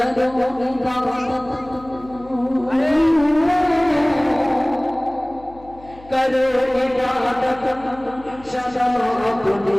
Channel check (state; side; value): noise; left; hum, 22 dB below the sound